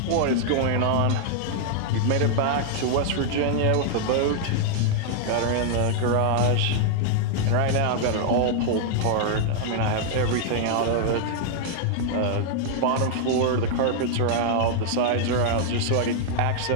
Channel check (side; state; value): both; different; correlation -0.01